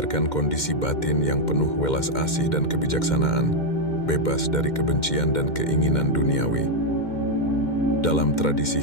kondisi batin yang penuh welas asih dan kebijaksanaan, bebas dari kebencian dan keinginan duniawi. Dalam tradisi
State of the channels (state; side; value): late; right; 2.1 ms